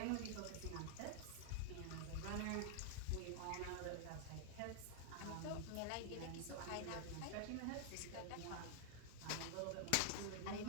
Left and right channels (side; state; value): both; different; correlation 0.00